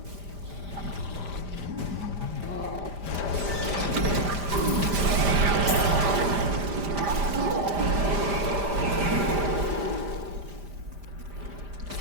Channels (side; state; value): left; late; 5.0 ms